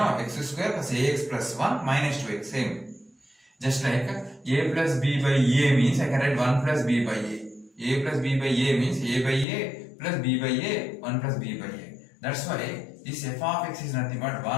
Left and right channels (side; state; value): right; drops out; at 9.5 s